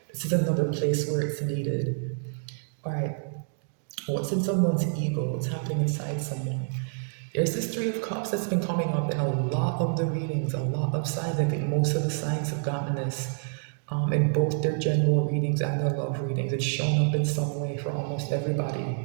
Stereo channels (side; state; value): left; silent; 60 dB below the other